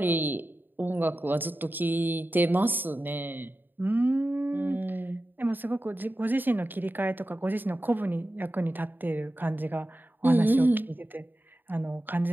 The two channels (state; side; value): late; left; 0.092 ms